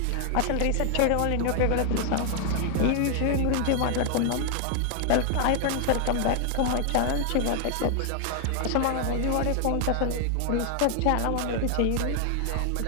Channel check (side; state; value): both; different; correlation 0.00